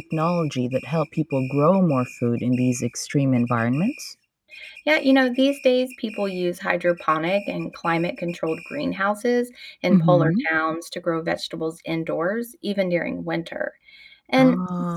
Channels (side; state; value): both; identical; correlation 1.00